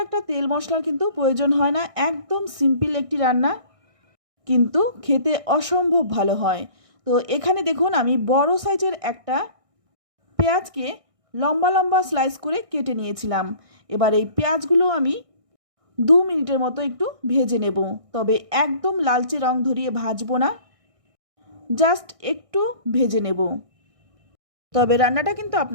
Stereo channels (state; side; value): late; left; 1.6 ms